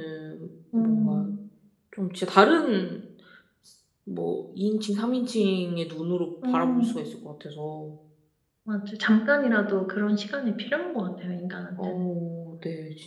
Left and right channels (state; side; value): identical; both; correlation 1.00